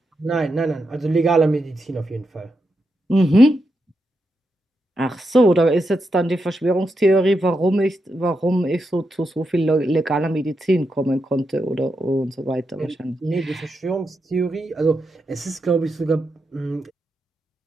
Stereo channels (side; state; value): both; normal; correlation 0.85